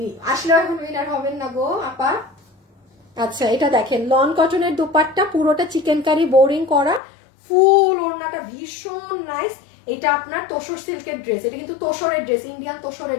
আসলে এখন উইনার হবেন না গো আপা। আচ্ছা, এটা দেখেন লন কটনের দুপাট্টা, পুরোটা চিকেন কারি বোরিং করা, ফুল ওড়নাটা ভীষণ নাইস। এটা আপনার তোষর সিল্কের ড্রেস, এটা কিন্তু তোষরের ড্রেস, ইন্ডিয়ান তোষরের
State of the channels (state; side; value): drops out; right; at 7.0 s